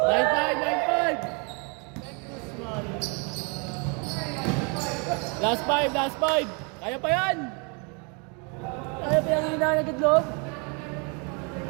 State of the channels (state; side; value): quieter; left; 34.1 dB